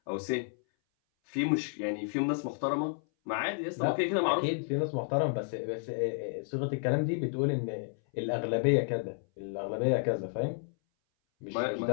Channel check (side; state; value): right; silent; 57 dB below the other